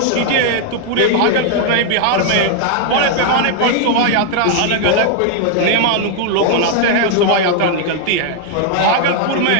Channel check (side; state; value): both; different; correlation 0.00